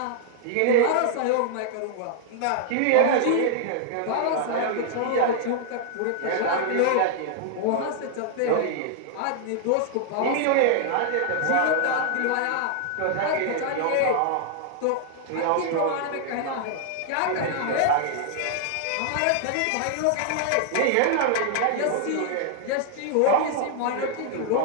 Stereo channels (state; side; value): different; both; correlation -0.01